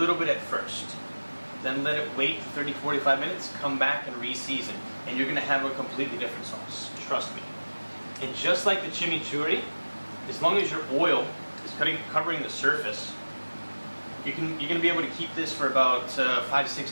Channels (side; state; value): both; inverted; correlation -1.00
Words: bit at first. Then let it wait 30-45 minutes, come back and re-season, and you're going to have a completely different sauce. Trust me. And just like the chimichurri, as long as your oil is covering the surface, you're going to be able to keep this for about